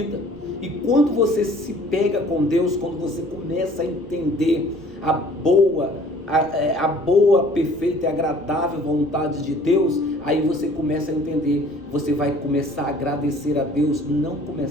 E quando você se pega com Deus, quando você começa a entender a boa, perfeita e agradável vontade de Deus, aí você começa a entender, você vai começar a agradecer a Deus, não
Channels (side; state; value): left; noise; rumble, 28 dB below the sound